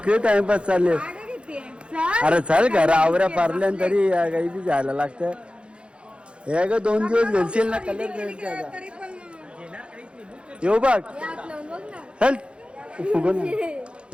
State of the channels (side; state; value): left; late; 0.057 ms